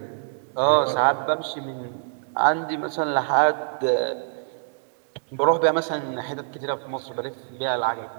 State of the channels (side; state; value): left; silent; digital silence